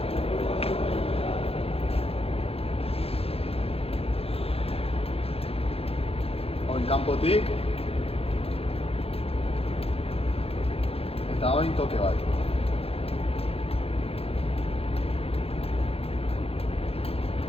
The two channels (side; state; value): right; late; 0.28 ms